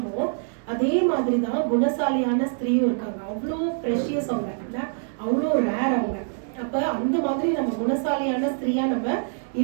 அதே மாதிரிதான் குணசாலியான ஸ்திரீயும் இருக்காங்க. அவ்வளோ ப்ரெஷியஸ் அவங்க, அவ்வளோ ரேர் அவங்க. அப்ப அந்த மாதிரி நம்ம குணசாலியான ஸ்திரீயா நம்ம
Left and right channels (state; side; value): silent; left; digital silence